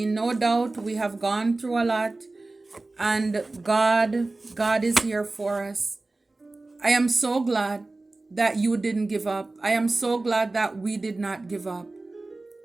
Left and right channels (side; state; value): left; quieter; 3.2 dB